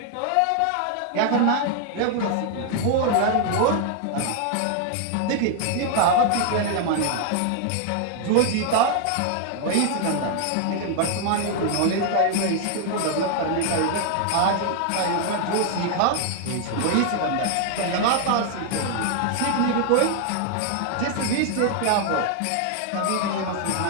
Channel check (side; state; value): both; different; correlation 0.00